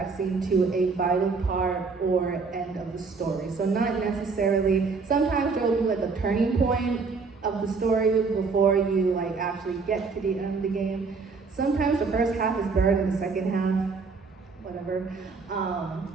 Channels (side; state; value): left; quieter; 4.6 dB